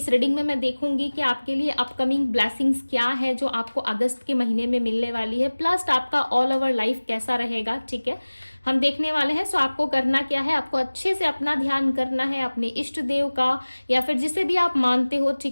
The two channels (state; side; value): inverted; both; correlation -1.00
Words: रीडिंग में मैं देखूंगी कि आपके लिए अपकमिंग ब्लेसिंग्स क्या है जो आपको अगस्त के महीने में मिलने वाली है, प्लस आपका ऑल ओवर लाइफ कैसा रहेगा। ठीक है, हम देखने वाले हैं। आपको करना क्या है, आपको अच्छे से अपना ध्यान करना है अपने इष्ट देव का, या फिर जिसे भी आप मानते हो।